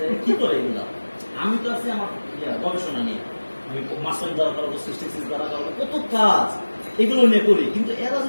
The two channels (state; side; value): inverted; both; correlation -1.00